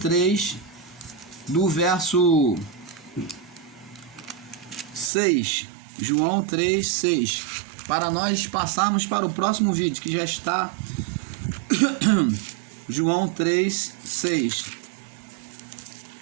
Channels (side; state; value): left; drops out; at 5.1 s